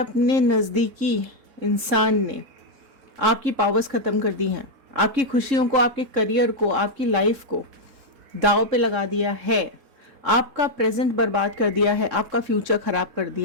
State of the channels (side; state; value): left; late; 3.7 ms